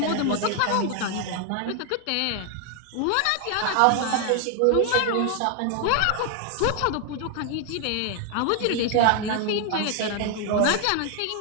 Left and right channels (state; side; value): different; both; correlation 0.00